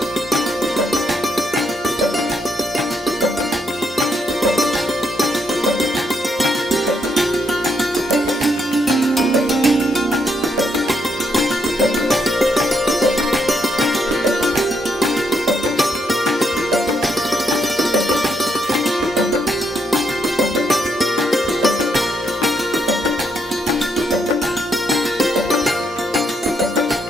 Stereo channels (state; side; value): normal; both; correlation 0.76